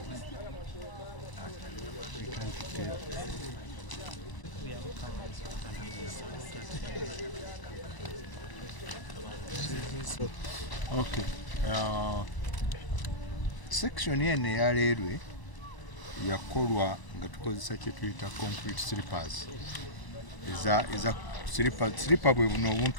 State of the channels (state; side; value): late; right; 1.0 ms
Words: okay. Section eno eya railway yakolwa nga tukozesa kye tuyita concrete slippers. Eza slipper bwe buno